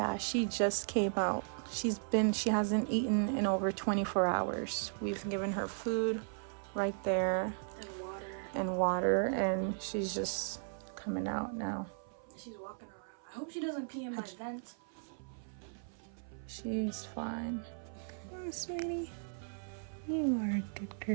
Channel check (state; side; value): silent; left; 53 dB below the other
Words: she just came out. She hasn't eaten in over 24 hours. We've given her food right there. And water. And she's just coming out now. She's walking around. I hope she doesn't pee in my vent. She's fine. Oh, sweetie. You are a good